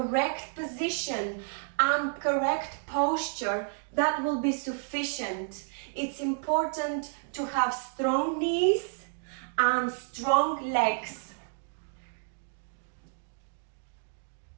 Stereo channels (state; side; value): silent; left; digital silence